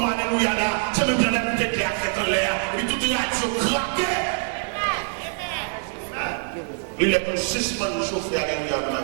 alléluia là. C'est même bien la bouteille qui a fait en l'air. Et puis tout est radio craqué. Il est pour suspendre le chauffeur alléluia dans ma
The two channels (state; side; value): silent; left; 62 dB below the other